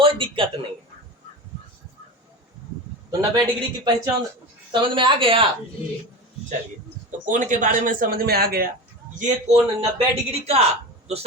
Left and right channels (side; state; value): both; normal; correlation 0.27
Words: दिक्कत नहीं है। तो 90 डिग्री की पहचान समझ में आ गया। चलिए, तो कोण के बारे में समझ में आ गया। ये कोण 90 डिग्री का तो